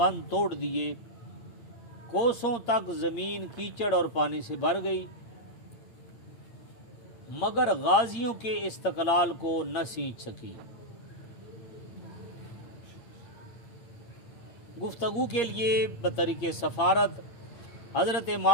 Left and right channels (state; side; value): late; right; 8.6 ms